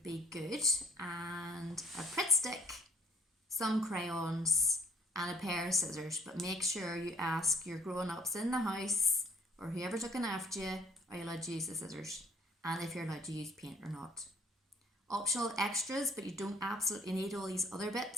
be good, and a Pritt stick, some crayons, and a pair of scissors. But make sure you ask your grown-ups in the house or whoever's looking after you, are you allowed to use the scissors, and if you're allowed to use paint or not. Optional extras, but you don't absolutely need all these other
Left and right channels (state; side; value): normal; both; correlation 0.60